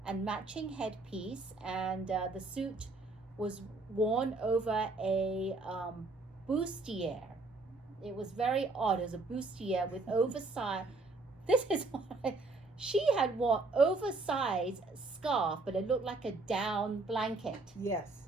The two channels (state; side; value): quieter; left; 3.4 dB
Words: and matching headpiece, and the suit was worn over a bustier. It was very odd. It was a bustier with oversized. This is what she had worn oversized scarf, but it looked like a down blanket.